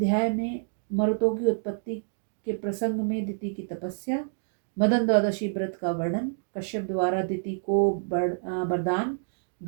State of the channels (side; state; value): left; silent; digital silence